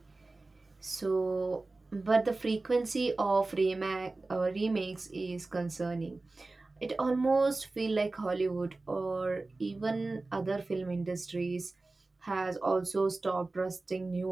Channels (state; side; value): quieter; left; 3.3 dB